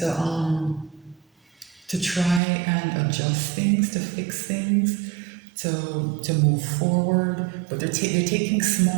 try and adjust things, to fix things, to move forward. But they're taking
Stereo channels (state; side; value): drops out; left; at 2.4 s